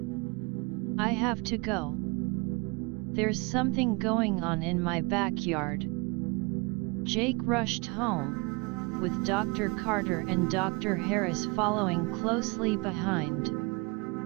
"I have to go. There's something going on in my backyard." Jake rushed home, with Dr. Carter and Dr. Harris following closely behind.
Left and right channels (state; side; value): quieter; left; 28.6 dB